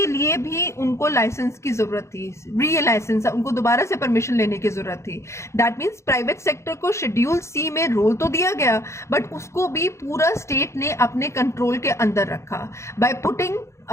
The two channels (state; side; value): late; right; 0.14 ms